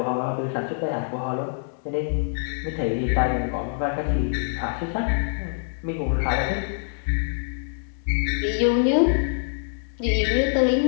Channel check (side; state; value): right; silent; digital silence